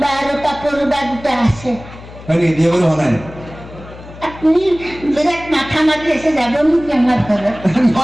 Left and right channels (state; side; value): noise; left; hum, 17 dB below the sound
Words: বা আৰু কাপোৰ বা দুটা আছে হয় নেকি বিয়া বাৰু হোৱা নাই আপুনি বিৰাট মাথা মাৰি আছে যাব নেকি আমাৰ ঘৰত